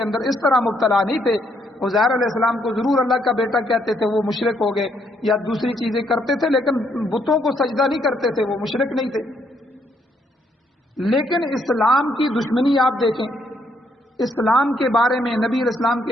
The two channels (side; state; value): both; normal; correlation 0.72